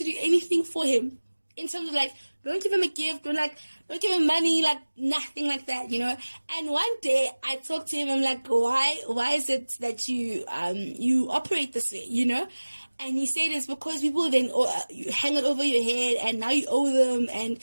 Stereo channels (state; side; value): inverted; both; correlation -1.00